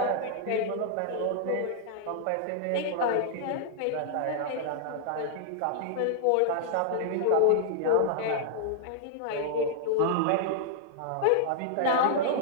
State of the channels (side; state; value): both; different; correlation -0.01